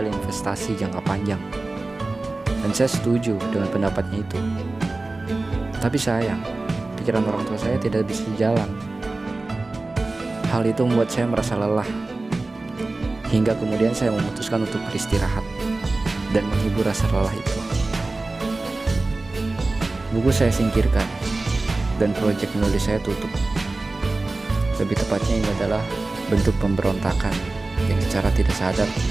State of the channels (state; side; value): quieter; left; 3.2 dB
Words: investasi jangka panjang, dan saya setuju dengan pendapatnya itu. Tapi sayang, pikiran orang tua saya tidak bisa jalan. Hal itu membuat saya merasa lelah, hingga kemudian saya memutuskan untuk beristirahat dan menghibur rasa lelah itu. Buku saya singkirkan, dan proyek menulis saya tutup. Lebih tepatnya ini adalah bentuk pemberontakan yang secara tidak sadar